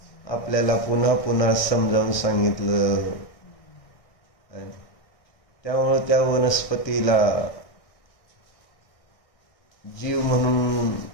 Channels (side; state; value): right; late; 1.6 ms